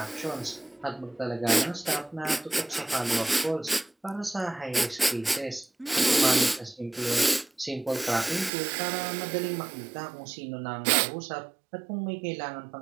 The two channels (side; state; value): left; drops out; at 8.5 s